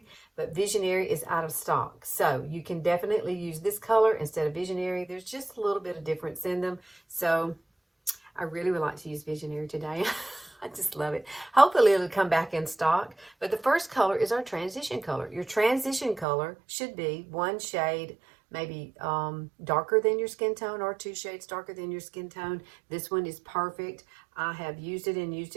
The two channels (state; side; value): drops out; left; at 16.2 s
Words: but Visionary is out of stock. So you can definitely use this color instead of Visionary. There's just a little bit of difference in them. So I really would like to use Visionary today. I just love it. Hopefully it'll come back in stock. But the first color is our transition color. Your transition color should be one shade maybe darker than your skin tone, or 2 shades darker than your skin tone. This one is perfect. I have used it and used